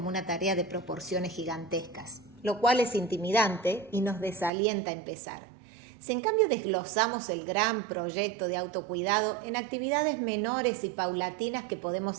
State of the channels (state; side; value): drops out; left; at 4.5 s